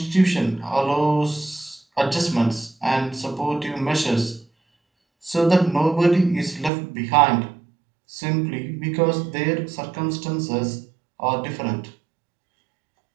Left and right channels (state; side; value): drops out; left; at 6.7 s